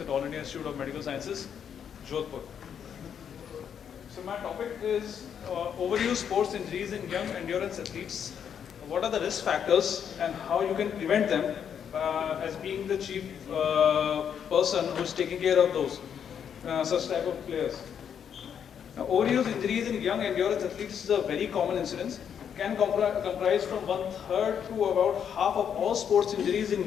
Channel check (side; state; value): right; quieter; 8.1 dB